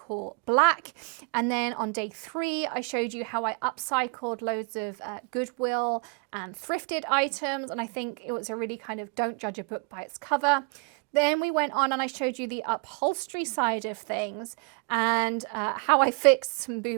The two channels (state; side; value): quieter; left; 32.4 dB